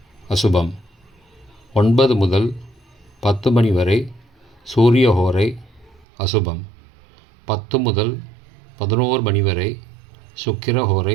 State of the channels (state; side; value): drops out; left; at 6.1 s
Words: அசுபம். 9 முதல் 10 மணி வரை சூரிய ஹோரை அசுபம். 10 முதல் 11 மணி வரை சுக்கிர